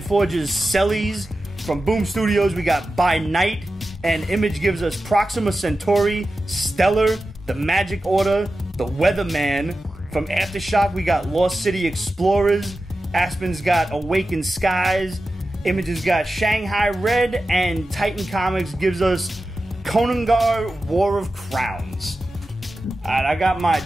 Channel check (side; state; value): both; normal; correlation 0.93